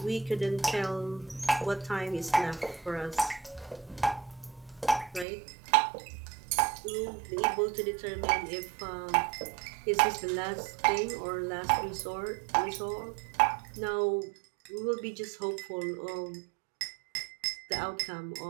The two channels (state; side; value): drops out; left; at 5.2 s